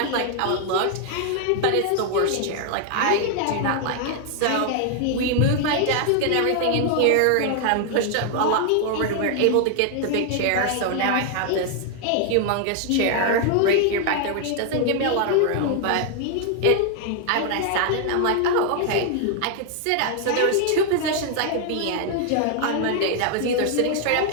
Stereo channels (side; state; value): both; different; correlation 0.00